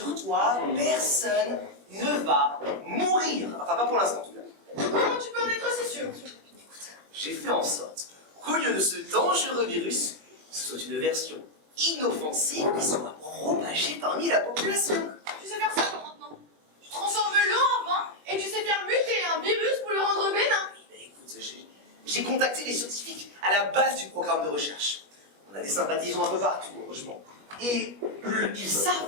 personne ne va mourir. Enfin, pas pour l'instant, en tout cas. Comment tu peux en être si sûr? J'ai fait en sorte qu'au lieu de ce dangereux virus, ce soit une version inoffensive qui soit propagée parmi la population. Tu sais faire ça toi, maintenant. Tu transformes l'eau en vin et tu sais faire muter un virus pour le rendre bénin. Mais écoute, j'ai contacté les scientifiques à la base du programme de recherche. On a des sympathisants un peu partout, heureusement. Et ils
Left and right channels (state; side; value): late; left; 21 ms